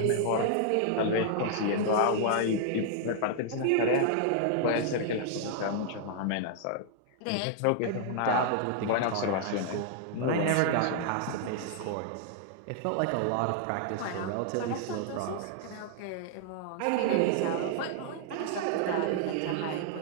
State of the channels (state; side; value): different; both; correlation -0.01